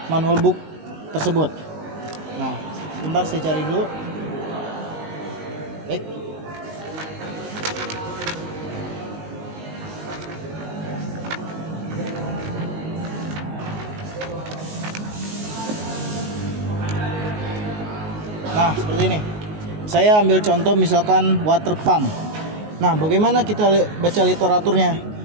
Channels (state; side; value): late; left; 19 ms